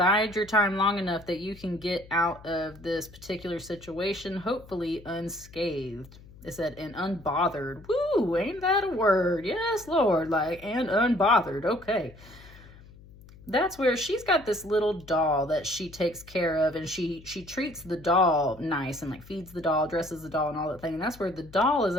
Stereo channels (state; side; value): noise; left; hum, 21 dB below the sound